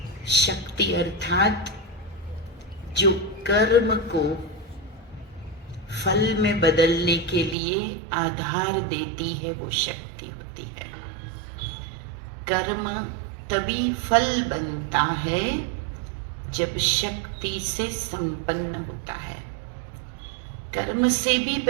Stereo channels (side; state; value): left; drops out; at 7.6 s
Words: शक्ति अर्थात जो कर्म को फल में बदलने के लिए आधार देती है, वो शक्ति होती है। कर्म तभी फल बनता है जब शक्ति से संपन्न होता है। कर्म से भी